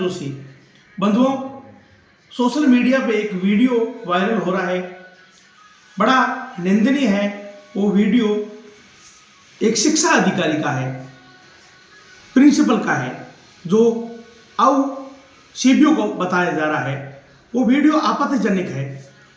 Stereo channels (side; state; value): both; identical; correlation 1.00